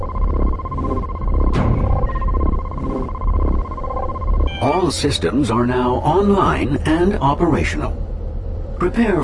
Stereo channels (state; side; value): identical; both; correlation 1.00